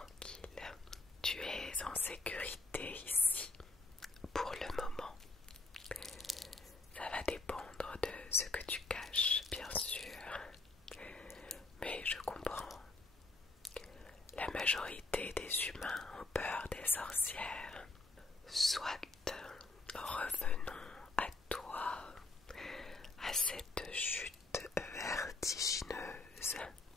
Tu es en sécurité ici pour le moment. Ça va dépendre de ce que tu caches, bien sûr. Mais je comprends. La majorité des humains ont peur des sorcières. Soit revenons à toi, à cette chute vertigineuse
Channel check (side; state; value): right; quieter; 3.4 dB